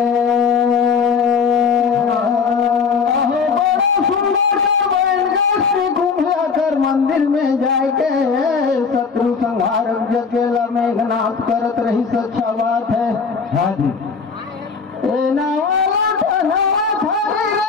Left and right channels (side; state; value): right; quieter; 5.4 dB